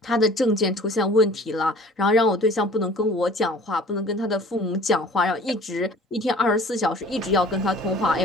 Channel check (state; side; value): normal; both; correlation 0.48